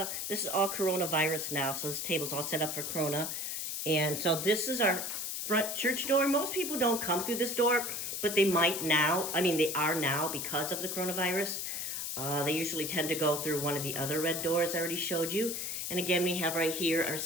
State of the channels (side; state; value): left; noise; hiss, 3 dB below the sound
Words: coronavirus now. So this table's all set up for Corona. And so this is our front church door. Most people don't come through this door, but they might now. I mean, they are now because of the coronavirus. They usually tend to go through one of the other red doors I already showed you. And again, we have right here our